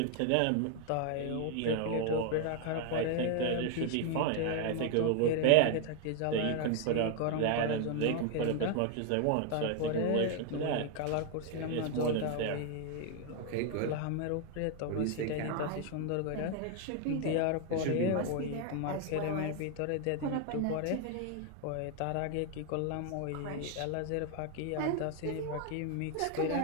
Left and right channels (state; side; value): different; both; correlation 0.00